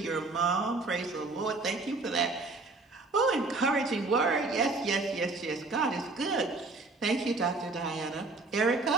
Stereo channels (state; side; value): quieter; left; 3.4 dB